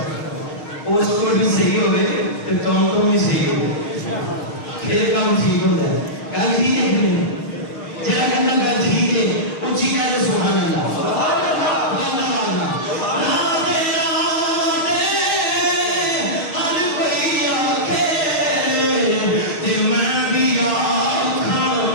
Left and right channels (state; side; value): late; right; 6.5 ms